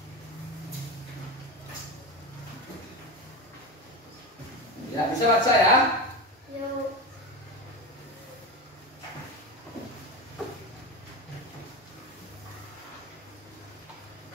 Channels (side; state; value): both; normal; correlation 0.22